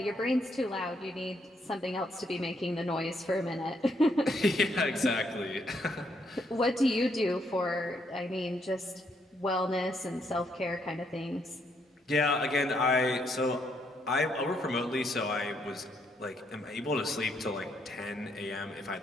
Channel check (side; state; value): both; normal; correlation 0.74